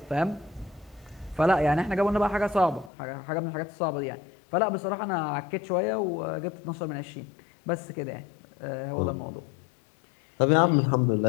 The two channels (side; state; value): right; drops out; at 2.9 s